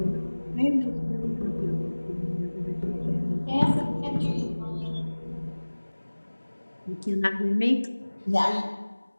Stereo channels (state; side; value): inverted; both; correlation -1.00